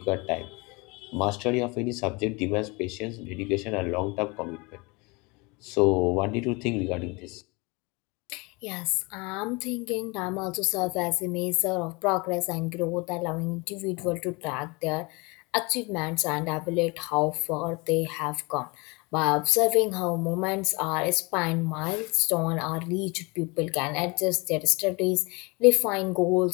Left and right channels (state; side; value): quieter; right; 27.2 dB